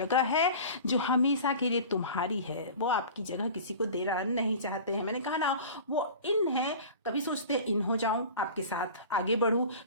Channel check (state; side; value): inverted; both; correlation -0.38